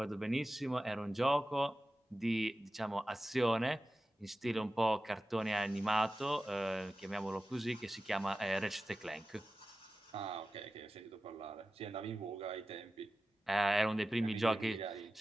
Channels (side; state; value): both; normal; correlation 0.95